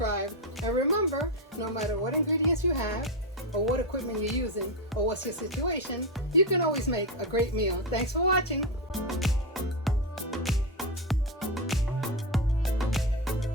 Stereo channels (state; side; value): normal; both; correlation 0.10